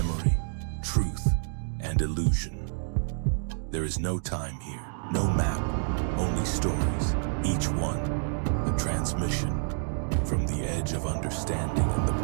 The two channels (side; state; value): left; silent; 56 dB below the other